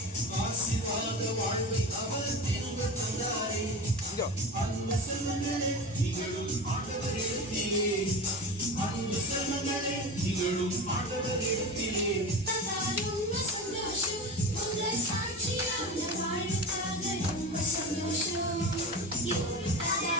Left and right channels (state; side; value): normal; both; correlation 0.28